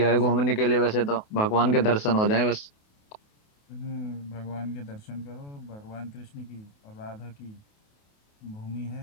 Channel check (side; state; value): right; late; 28 ms